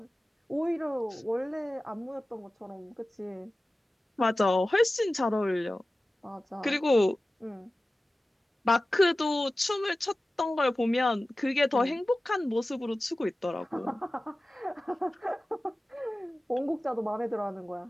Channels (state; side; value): normal; both; correlation 0.96